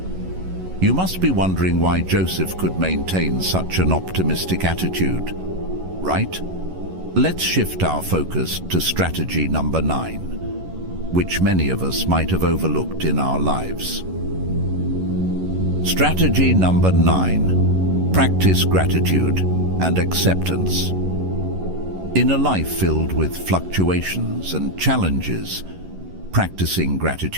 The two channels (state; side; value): late; left; 11 ms